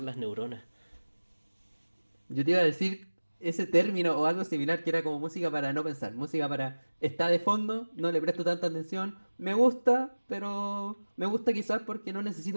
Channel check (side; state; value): both; inverted; correlation -1.00